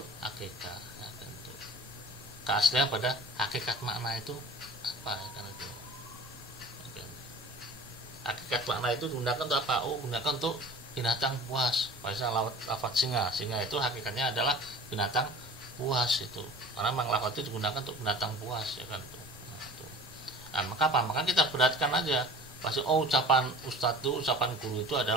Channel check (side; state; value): both; normal; correlation 0.43